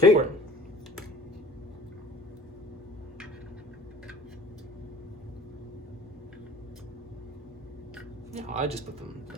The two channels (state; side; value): normal; both; correlation 0.47